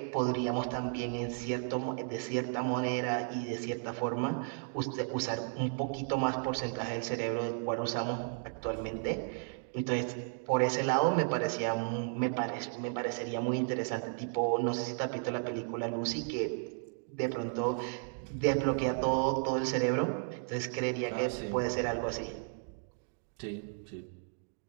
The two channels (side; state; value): left; silent; 55 dB below the other